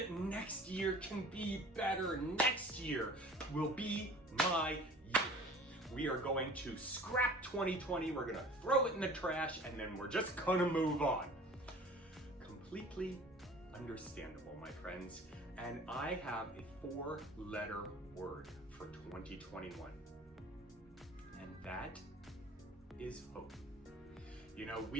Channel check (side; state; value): both; normal; correlation 0.45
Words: next year can be better. Next year will be my year. We are going to scrap 2020, we're gonna throw it in the trash, and then we're just gonna move on. Completely understandable, my friends. And I have a 4-letter word for 2021. And that is hope.